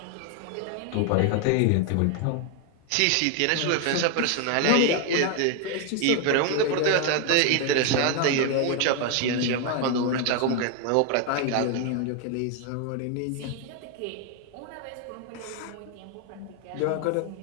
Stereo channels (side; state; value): both; different; correlation 0.01